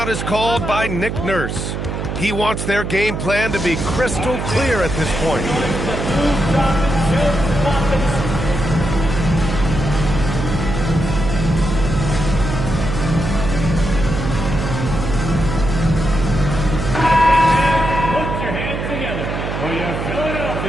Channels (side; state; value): right; noise; hum, 4 dB below the sound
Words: is called by Nick Nurse. He wants their game plan to be crystal clear at this point. Put your hands together for your